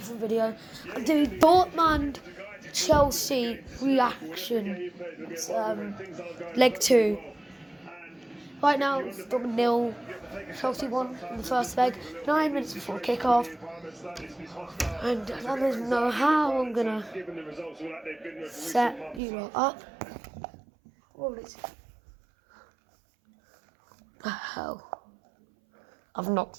video. I'm doing Dortmund Chelsea reaction. It's leg 2. Right now it's Dortmund 0, Chelsea 1 in the first leg, 9 minutes before kickoff. And I don't even know how I'm gonna set you lot up. What is the hell? I've knocked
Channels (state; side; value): drops out; left; at 19.2 s